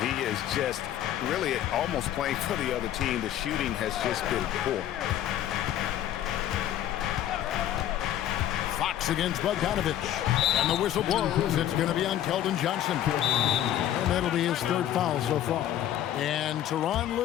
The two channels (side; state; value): right; quieter; 11.7 dB